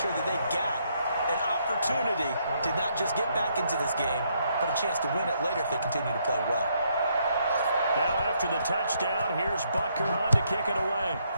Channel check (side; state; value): both; inverted; correlation -0.73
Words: that they got an opportunity to not just get back into this game, but a chance to win it later if they continue to play well. Now after the touchdown, here's Butker on to kick it away.